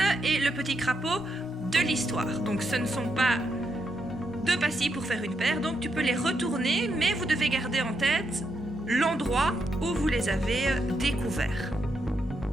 et le petit crapaud de l'histoire. Donc ce ne sont pas 2 pastilles pour faire une paire, donc tu peux les retourner, mais vous devez garder en tête l'endroit où vous les avez découverts.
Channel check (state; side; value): normal; both; correlation 0.81